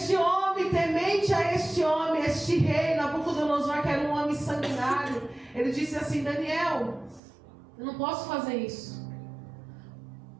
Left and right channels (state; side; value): drops out; left; at 7.2 s